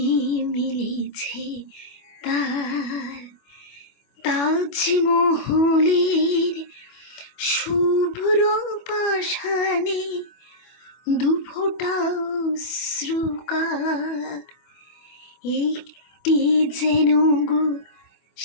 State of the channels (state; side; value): late; right; 25 ms